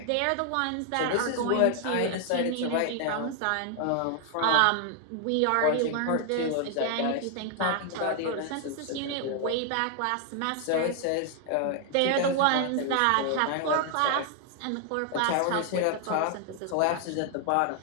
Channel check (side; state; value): both; different; correlation 0.00